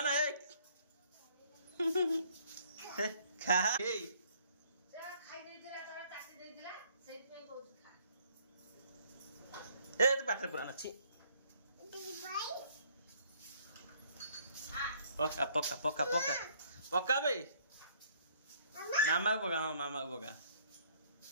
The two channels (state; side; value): inverted; both; correlation -0.62